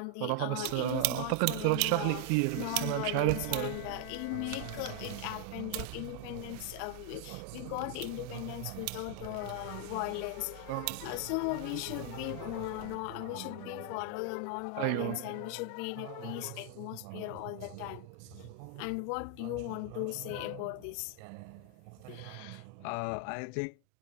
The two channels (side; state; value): both; different; correlation 0.00